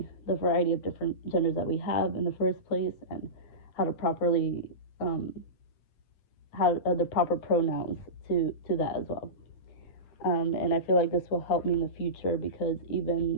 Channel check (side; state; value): right; late; 9.2 ms